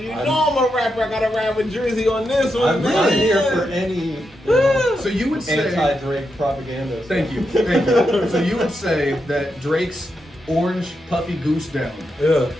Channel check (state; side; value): normal; both; correlation 0.85